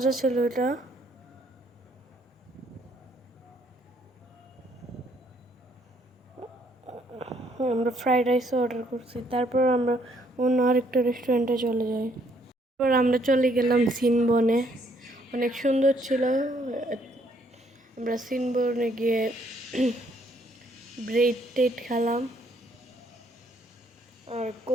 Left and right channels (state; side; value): normal; both; correlation 0.68